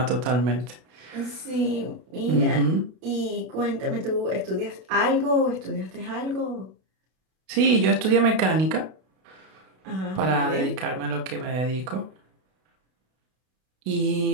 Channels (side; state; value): left; late; 32 ms